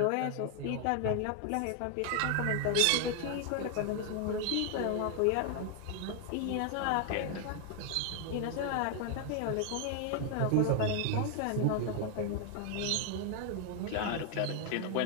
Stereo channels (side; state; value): both; different; correlation 0.00